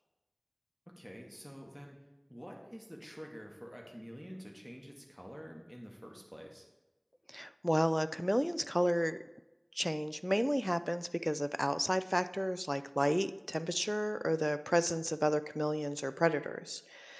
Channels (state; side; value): identical; both; correlation 1.00